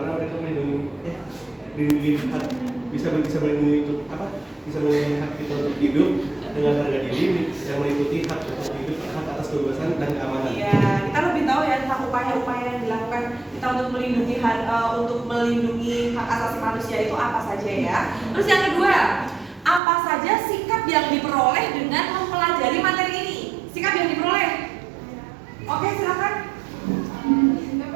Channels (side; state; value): left; drops out; at 19.8 s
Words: mereka melindungi hak, bisa melindungi untuk apa? Bisa melindungi hak kita untuk hidup dengan harga diri, yang meliputi hak untuk hidup, hak atas kebebasan dan keamanan. Iya, kita lebih tahu ya tentang upaya-upaya yang dilakukan kita untuk melindungi hak asasi manusia itu apa saja ya. Terus yang kedua, apa saja sikap yang diperoleh dengan mempelajari materi ini? Sikap yang diperoleh. Oke, silakan. Sikap